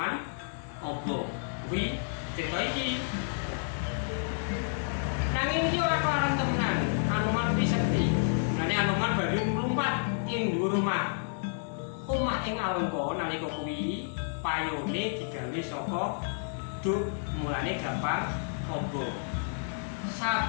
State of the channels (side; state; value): right; silent; digital silence